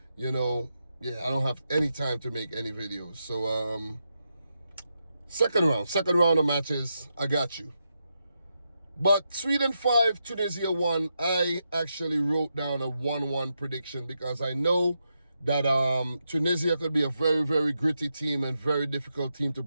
I don't have any time to make any videos. So, second round of matches, I got you. But Sweden 5, Tunisia 1, I actually wrote down a 1-1 prediction because I know that Tunisia could be a very, very gritty team and very difficult team to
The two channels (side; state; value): both; inverted; correlation -0.85